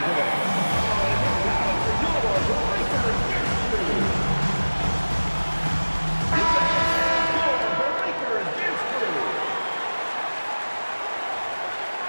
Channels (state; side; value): inverted; both; correlation -1.00